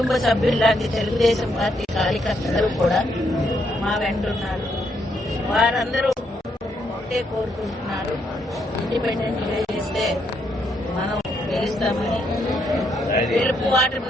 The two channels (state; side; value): normal; both; correlation 0.75